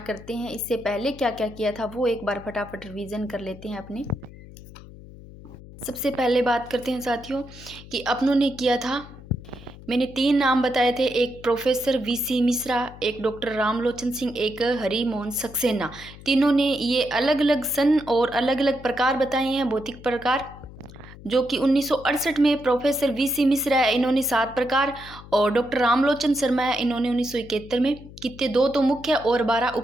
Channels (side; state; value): left; noise; hum, 18 dB below the sound